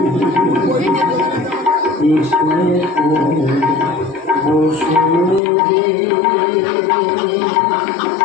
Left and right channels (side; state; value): right; drops out; at 5.4 s